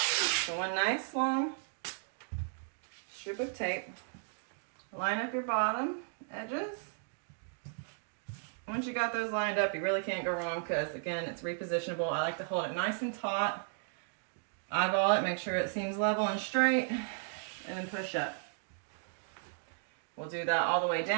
one nice long strip of tape. Line up your bottom edges. Once you got those lined up, you really can't go wrong because, again, it's repositionable. I like to hold it nice and taut. Eyeball it, make sure it seems level and straight, and then push up. We'll do that all the way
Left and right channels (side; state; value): left; silent; digital silence